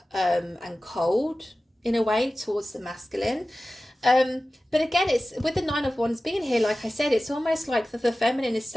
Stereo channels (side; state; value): both; normal; correlation 0.96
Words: and cold in a way towards the masculine. But again, it's with the Nine of Wands being here, like I said, it's almost like the feminine is